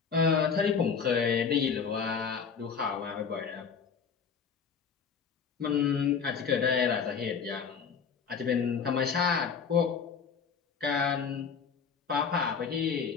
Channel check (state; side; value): quieter; right; 6.2 dB